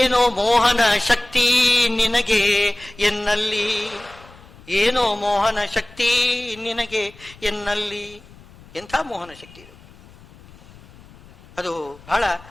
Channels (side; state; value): left; noise; rumble, 23 dB below the sound